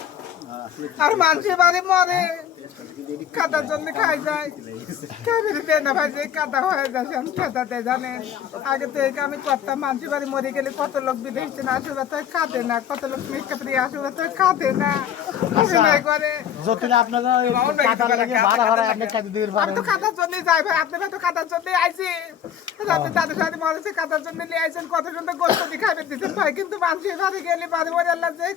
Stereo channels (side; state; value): right; quieter; 9.3 dB